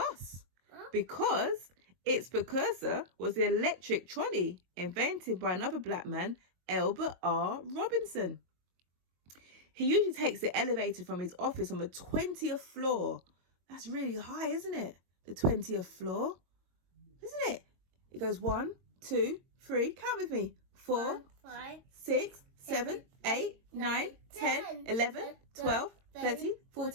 because its precursor was the electric trolley invented by another black man, Albert R. Robinson. He usually takes the elevator from his office on the 20th floor. That's really high, isn't it? The 20th floor. Isn't it? It goes 1, 2, 3. Count with me. 4, 5, 6, 7, 8, 9, 10, 11, 12, 13,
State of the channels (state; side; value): late; left; 22 ms